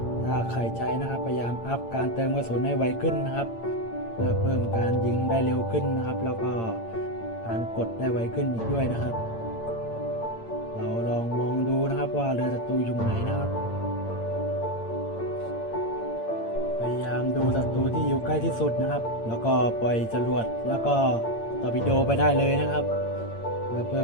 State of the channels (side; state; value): right; late; 8.8 ms